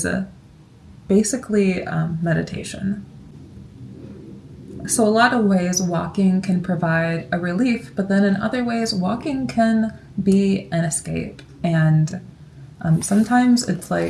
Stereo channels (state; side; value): identical; both; correlation 1.00